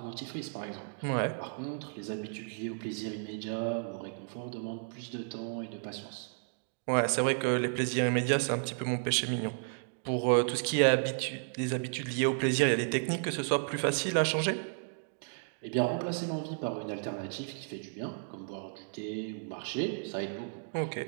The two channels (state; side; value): silent; left; digital silence